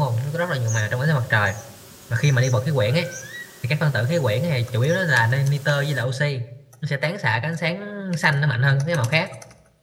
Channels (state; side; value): identical; both; correlation 1.00